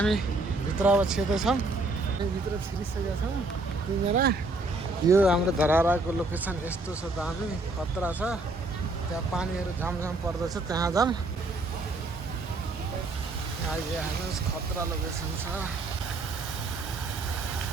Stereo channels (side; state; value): left; quieter; 3.1 dB